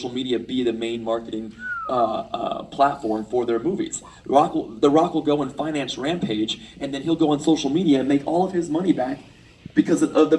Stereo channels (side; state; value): both; identical; correlation 1.00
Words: media be the main marketing platform for their movies. The Rock will go and finance Rampage, and then he'll go on social media and make all of his money back because of